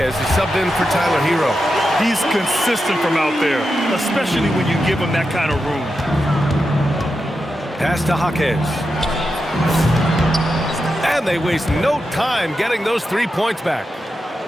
is subbed in for Tyler Hero. He's consistent from out there, especially when you give him that kind of room. Pass to Jaquez. And they waste no time getting those 3 points back.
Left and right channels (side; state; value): both; normal; correlation 0.88